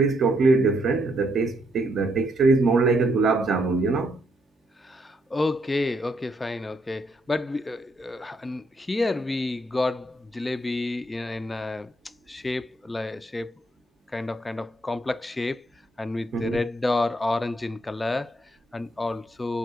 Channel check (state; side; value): normal; both; correlation 0.75